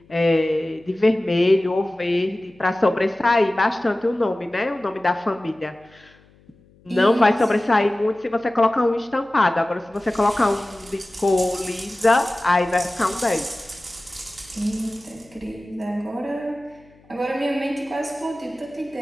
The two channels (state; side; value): noise; left; hum, 29 dB below the sound